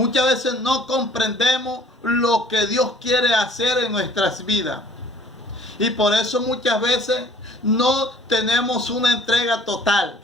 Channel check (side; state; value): both; normal; correlation 0.54